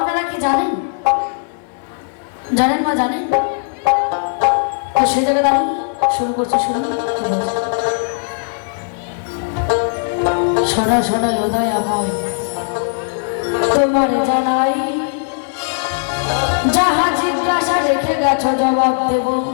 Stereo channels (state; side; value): silent; right; digital silence